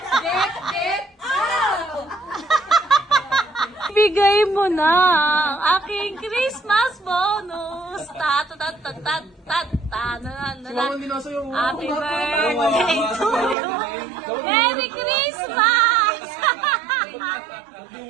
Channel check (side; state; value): left; drops out; at 13.6 s